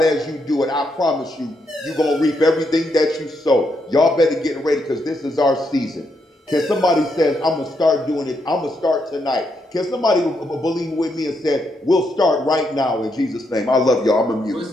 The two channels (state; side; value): normal; both; correlation 0.79